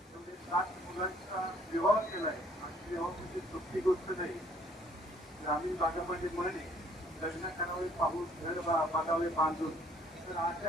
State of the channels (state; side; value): normal; both; correlation 0.61